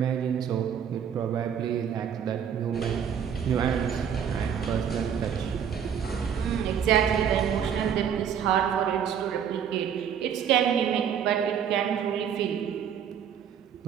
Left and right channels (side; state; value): left; quieter; 8.3 dB